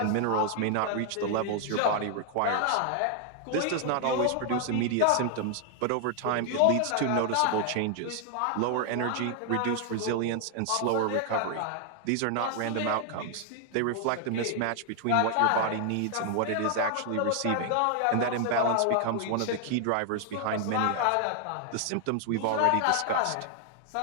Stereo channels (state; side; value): different; both; correlation 0.00